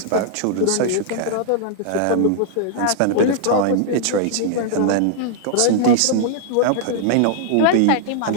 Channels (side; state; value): both; different; correlation -0.01